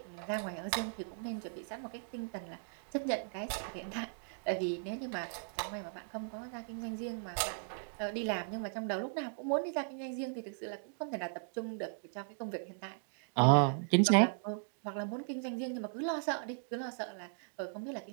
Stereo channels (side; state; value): left; silent; digital silence